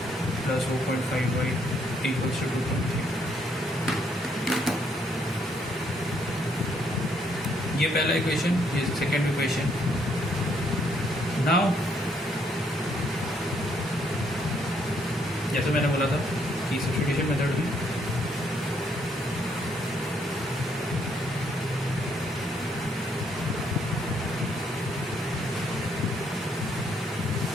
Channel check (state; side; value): normal; both; correlation 0.71